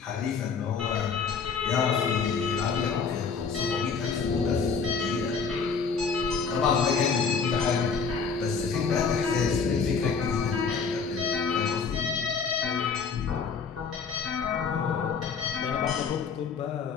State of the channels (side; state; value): right; quieter; 5.5 dB